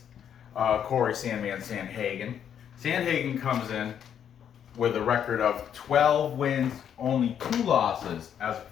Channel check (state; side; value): quieter; right; 8.9 dB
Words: Cory, Sandman, Sandhagen. Sandhagen comes in with a record of 12 wins, only 2 losses as a